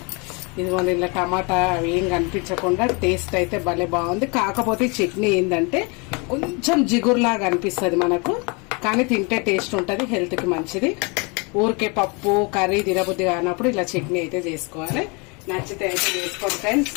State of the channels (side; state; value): right; quieter; 30.5 dB